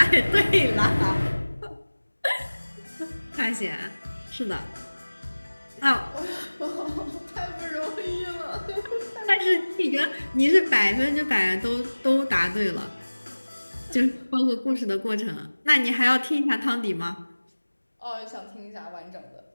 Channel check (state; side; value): inverted; both; correlation -1.00